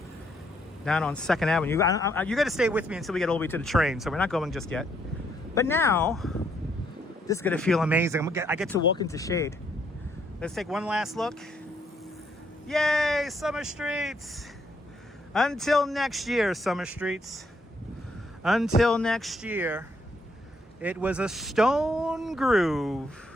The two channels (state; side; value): normal; both; correlation 0.72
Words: down on 2nd Avenue. You got to stay with me until we get all the way to the train, so we're not going just yet. But now, this is going to feel amazing. I get to walk into shade. Let's take one last look. Yay, Summer Streets! Until next year, Summer Streets. Until next year. It was a stone